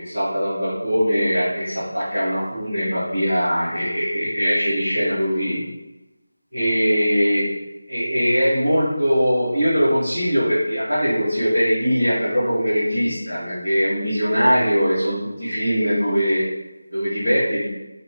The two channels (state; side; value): inverted; both; correlation -0.96